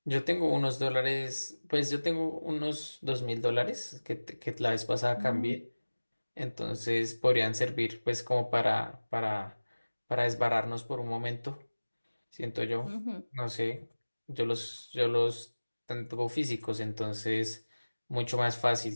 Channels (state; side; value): inverted; both; correlation -1.00